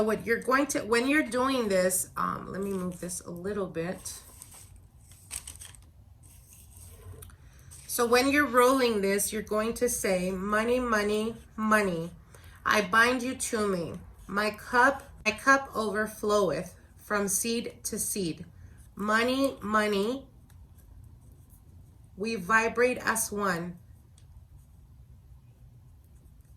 what you're going to, when you're doing this, let me move this a little bit. So when you're rolling this, you're going to say, money, money, money, I bind you to me. My cup overfloweth from seed to seed. Money, money, we vibrate as one.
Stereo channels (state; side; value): identical; both; correlation 1.00